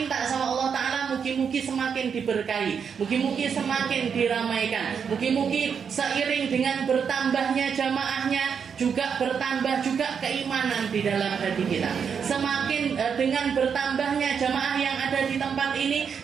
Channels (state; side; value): quieter; left; 6.8 dB